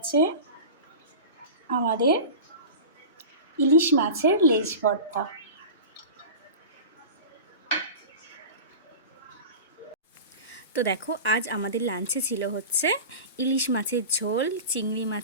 আমাদের ইলিশ মাছের লেজ ভর্তা। তো দেখো আজ আমাদের লাঞ্চে ছিল হচ্ছে ইলিশ মাছের ঝোল, চিংড়ি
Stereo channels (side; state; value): both; inverted; correlation -0.33